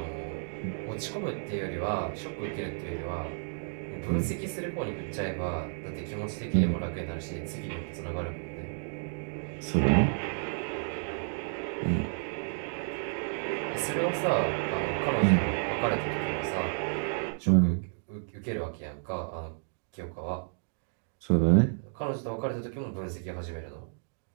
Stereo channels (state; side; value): silent; left; digital silence